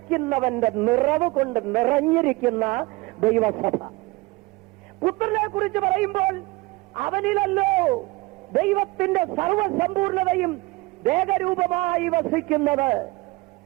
നിറവ് കൊണ്ട് നിറഞ്ഞിരിക്കുന്ന ദൈവസഭ. പുത്രനെ കുറിച്ച് പറയുമ്പോൾ അവനിലല്ലോ ദൈവത്തിന്റെ സർവസമ്പൂർണതയും ദേഹരൂപമായി വസിക്കുന്നത്.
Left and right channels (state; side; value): quieter; left; 23.0 dB